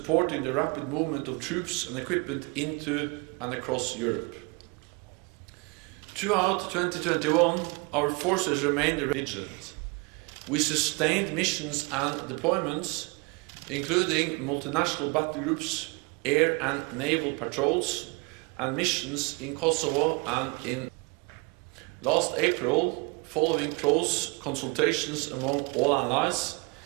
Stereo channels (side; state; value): left; quieter; 29.8 dB